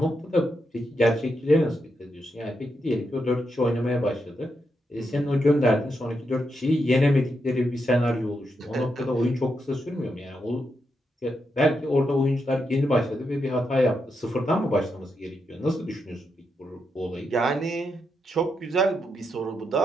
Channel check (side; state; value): both; normal; correlation 0.83